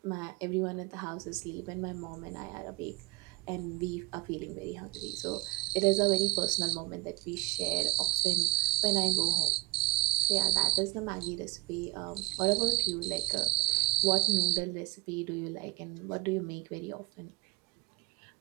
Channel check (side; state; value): left; quieter; 20.1 dB